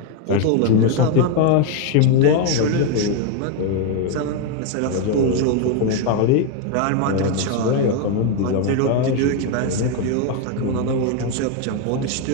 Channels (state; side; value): different; both; correlation 0.01